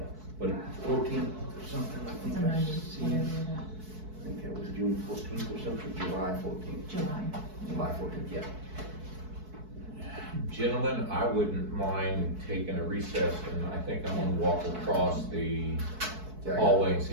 but 14th or something, I think it's a I Monday, seen. whatever that, I think that was June 14th or something, July 14th. July. July 14th, yeah. Gentlemen, I wouldn't mind taking a recess, and I think I'm gonna walk across the hallway and see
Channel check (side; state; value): left; late; 4.6 ms